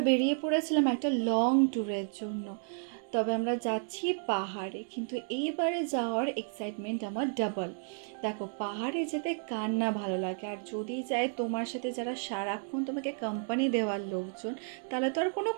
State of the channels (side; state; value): left; silent; 56 dB below the other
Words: বেরিয়ে পড়েছিলাম একটা লং ট্যুরের জন্য। তবে আমরা যাচ্ছি পাহাড়ে, কিন্তু এইবারে যাওয়ার এক্সাইটমেন্ট আমার ডাবল। দেখো, পাহাড়ে যেতে কার না ভালো লাগে, আর যদি যায় তোমার সাথে যারা সারাক্ষণ তোমাকে কোম্পানি দেওয়ার লোকজন, তাহলে তো আর কোনো